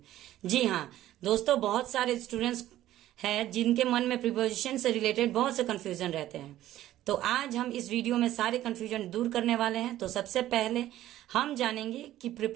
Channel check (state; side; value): quieter; left; 13.8 dB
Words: जी हाँ दोस्तों, बहुत सारे स्टूडेंट्स हैं जिनके मन में प्रीपोजिशन से रिलेटेड बहुत से कंफ्यूजन रहते हैं। तो आज हम इस वीडियो में सारे कंफ्यूजन दूर करने वाले हैं। तो सबसे पहले हम जानेंगे कि